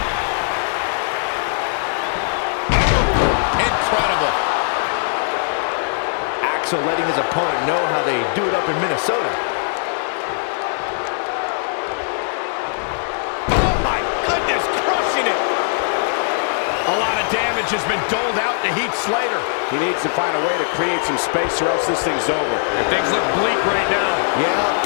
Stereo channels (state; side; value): silent; right; 61 dB below the other